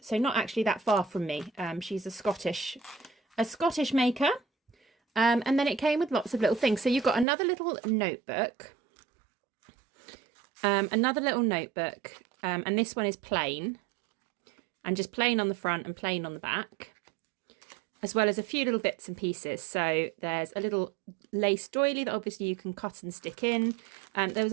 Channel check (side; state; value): left; drops out; at 7.2 s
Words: so not actually that far from me. She's a Scottish maker. And then it came with lots of little things. So you've got another little notebook. And this one is plain. And just plain on the front and plain on the back. As well as a few little bits and pieces. So there's a little lace doily that obviously you can cut and stick in. There